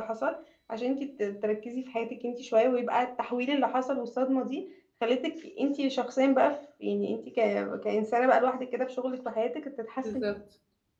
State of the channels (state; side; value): identical; both; correlation 1.00